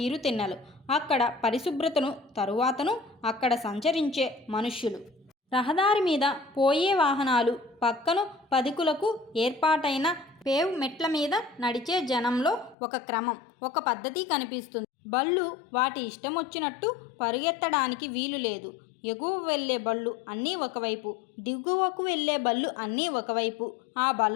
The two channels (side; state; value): right; drops out; at 12.8 s